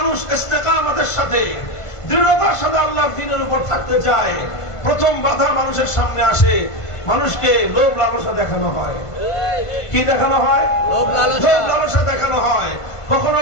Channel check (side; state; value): right; late; 1.5 ms